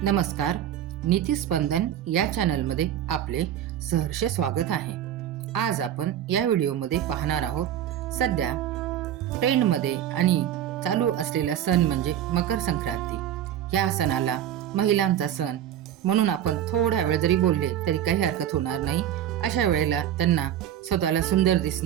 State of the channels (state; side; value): quieter; left; 10.8 dB